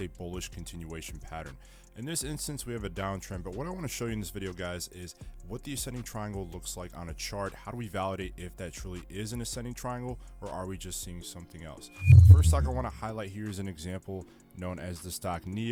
a bullish continuation pattern. In this instance, we have a downtrend, but what I want to show you in this video, guys, is what the ascending triangle looks like on a chart. How do we validate if that truly is an ascending triangle, or are we just seeing something else? The first stock I want to highlight here is an example known as the stock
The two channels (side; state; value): both; identical; correlation 1.00